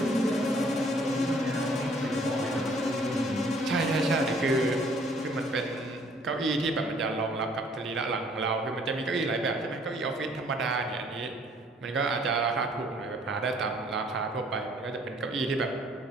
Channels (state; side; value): normal; both; correlation 0.59